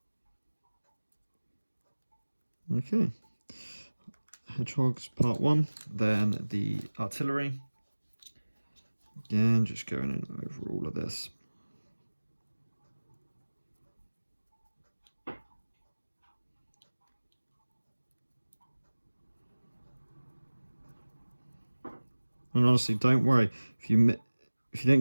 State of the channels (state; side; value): inverted; both; correlation -1.00